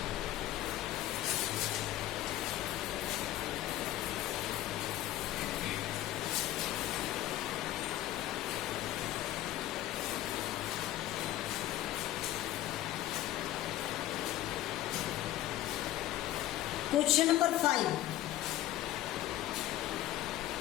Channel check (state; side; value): quieter; right; 14.3 dB